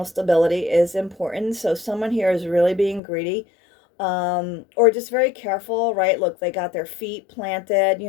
stability is important. So someone here is really being greedy, or just very careful, right? Look, they got their feet planted,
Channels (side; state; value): right; drops out; at 3.0 s